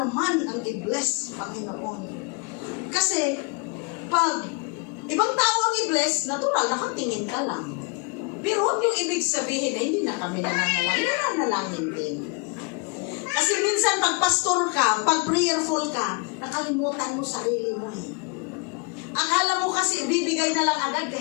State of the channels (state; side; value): quieter; right; 31.5 dB